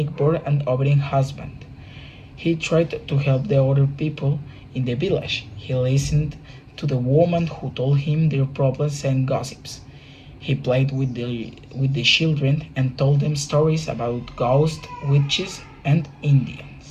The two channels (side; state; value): both; identical; correlation 1.00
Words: and obedient husband. He tried to help the other people in the village. He listened to the women who told him their problems and gossips. He played with the children and told them stories about ghosts, witches, and